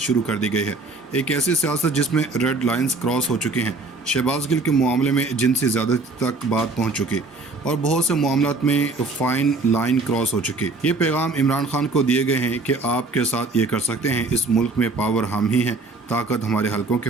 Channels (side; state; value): left; quieter; 3.4 dB